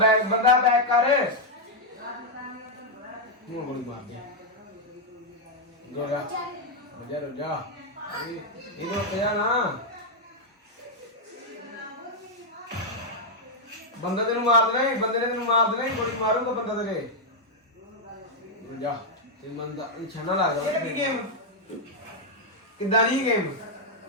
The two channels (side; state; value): both; normal; correlation -0.01